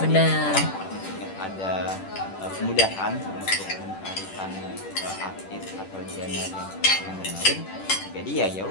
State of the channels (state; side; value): late; right; 10 ms